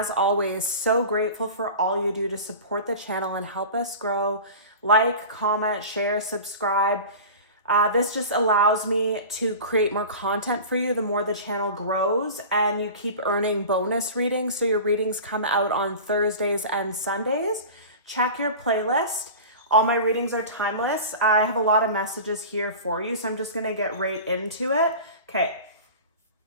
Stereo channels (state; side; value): inverted; both; correlation -0.35